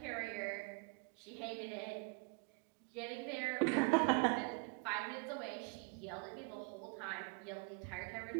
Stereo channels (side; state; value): left; quieter; 34.4 dB